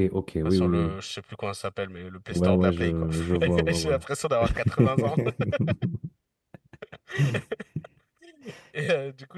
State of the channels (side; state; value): both; identical; correlation 1.00